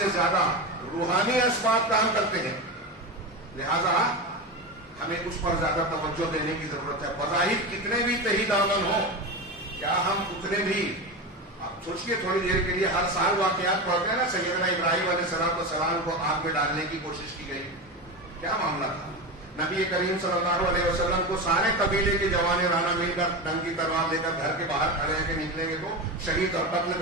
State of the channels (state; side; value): normal; both; correlation 0.21